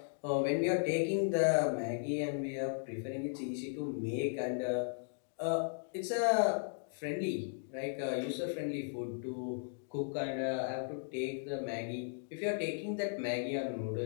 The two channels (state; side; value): silent; right; digital silence